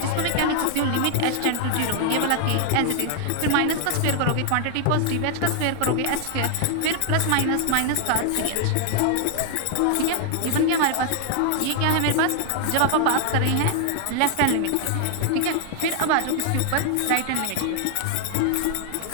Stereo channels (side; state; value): both; different; correlation 0.00